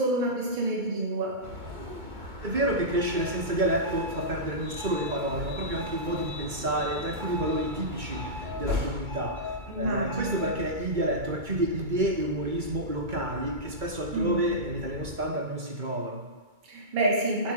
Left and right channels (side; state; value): left; late; 2.2 ms